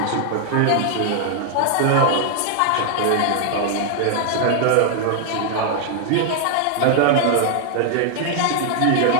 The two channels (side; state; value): both; different; correlation 0.00